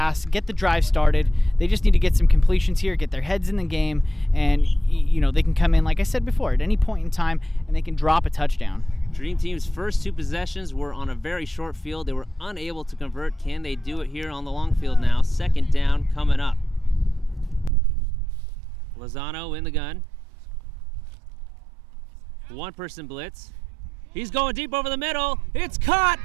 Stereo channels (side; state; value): left; drops out; at 17.7 s